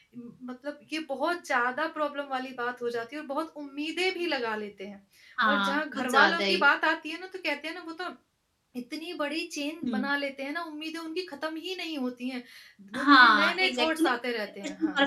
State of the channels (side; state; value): both; identical; correlation 1.00